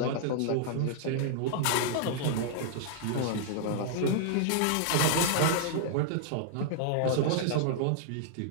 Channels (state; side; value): different; both; correlation -0.01